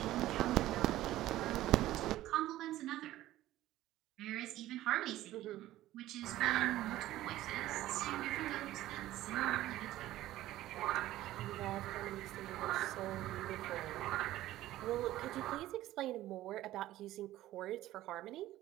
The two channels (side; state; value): left; quieter; 14.9 dB